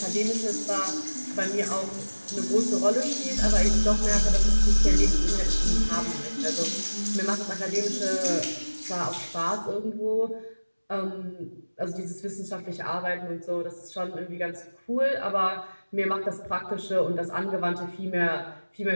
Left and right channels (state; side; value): inverted; both; correlation -1.00